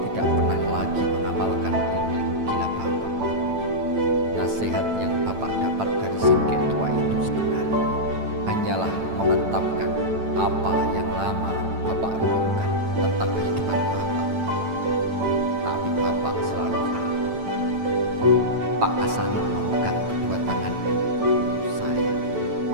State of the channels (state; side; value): late; left; 9.0 ms